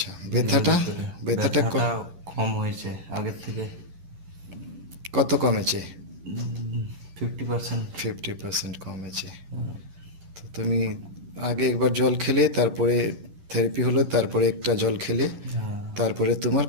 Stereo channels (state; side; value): late; left; 10 ms